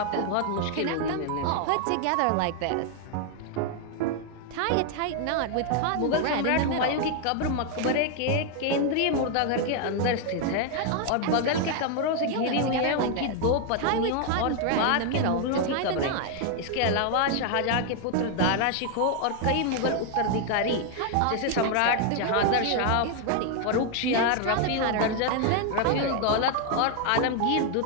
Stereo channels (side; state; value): both; different; correlation 0.00